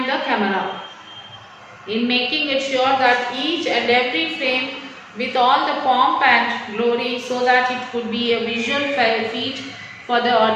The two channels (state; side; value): identical; both; correlation 1.00